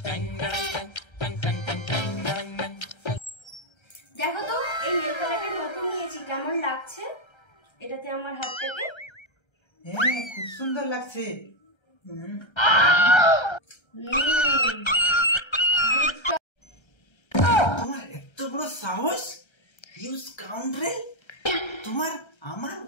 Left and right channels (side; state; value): right; late; 1.3 ms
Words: দেখো তো, এই নেল কালারটা নতুন নিয়েছি, কেমন লাগছে এটাতে আমার হাতটাকে? হ্যাঁ খুব সুন্দর লাগছে। তোমার এত বড় সাহস, ইউ স্কাউন্ড্রেল! তোমার আমার